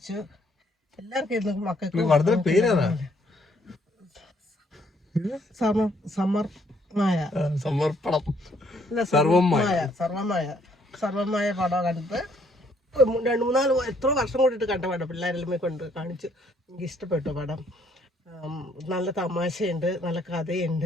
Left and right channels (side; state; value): both; normal; correlation 0.67